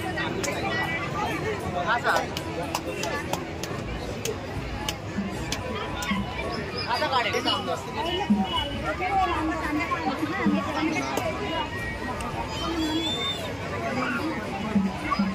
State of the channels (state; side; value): identical; both; correlation 1.00